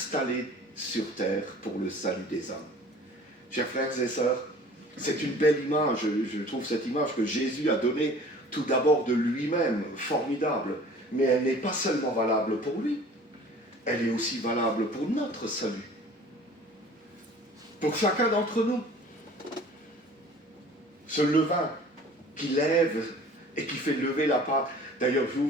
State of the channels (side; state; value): both; normal; correlation 0.47